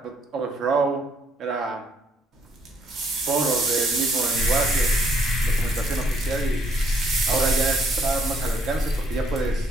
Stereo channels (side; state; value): both; normal; correlation 0.68